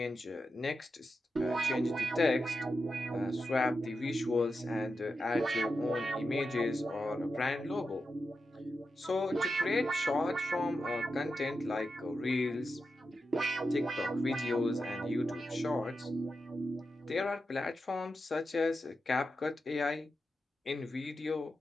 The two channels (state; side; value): normal; both; correlation 0.88